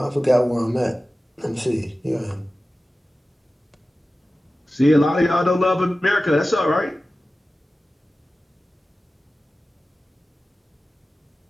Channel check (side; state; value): both; normal; correlation 0.95